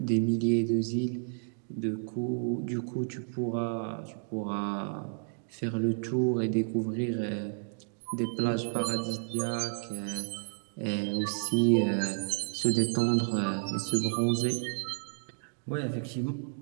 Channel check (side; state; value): left; silent; digital silence